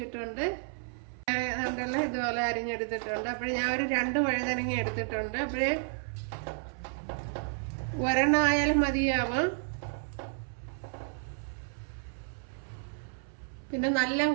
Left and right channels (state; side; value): silent; left; 57 dB below the other